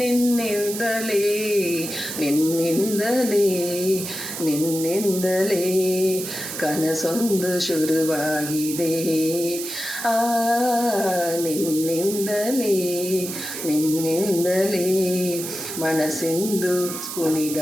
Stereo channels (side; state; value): right; noise; hiss, 7 dB below the sound